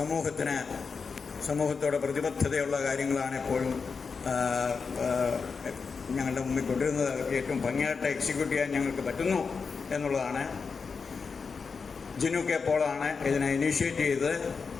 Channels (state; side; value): quieter; right; 5.2 dB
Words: സമൂഹത്തോട് പ്രതിബദ്ധതയുള്ള കാര്യങ്ങളാണ് എപ്പോഴും ഞങ്ങളുടെ മുമ്പിൽ കൊണ്ടുവരുന്നത്. ഏറ്റവും ഭംഗിയായിട്ട് എക്സിക്യൂട്ട് ചെയ്യാൻ ഞങ്ങൾക്ക് പറ്റുന്നു എന്നുള്ളതാണ്. ജിനു കെ പോളാണ് ഇതിനെ ഇനീഷ്യേറ്റ് ചെയ്തത്.